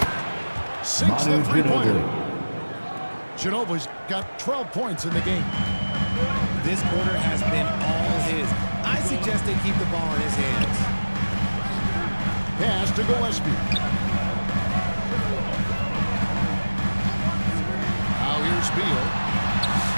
Sinks Manu the 3-pointer. Ginobili. Ginobili's got 12 points in the game. This quarter has been all his. I suggest they keep the ball in his hands. Pass to Gillespie. Now here's Beal.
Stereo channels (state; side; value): inverted; both; correlation -1.00